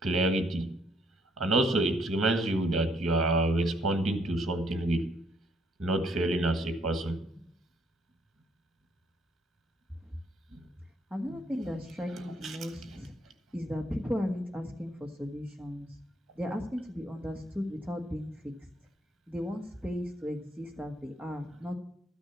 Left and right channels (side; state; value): both; normal; correlation 0.69